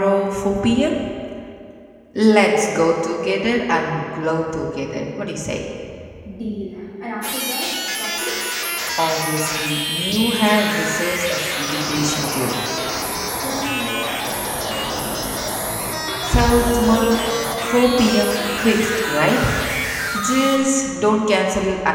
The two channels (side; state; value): both; identical; correlation 1.00